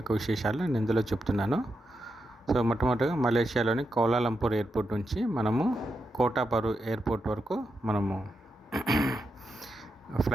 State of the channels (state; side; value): normal; both; correlation 0.86